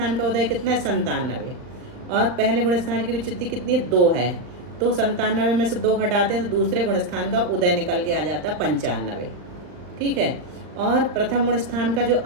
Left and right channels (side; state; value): left; late; 39 ms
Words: का उदय कितना है? 97, और पहले गुण स्थान की विच्युति कितनी? 2 है, तो 97 में से 2 घटाते हैं तो दूसरे गुण स्थान का उदय निकल के आ जाता है 95, ठीक है। और प्रथम गुण स्थान का जो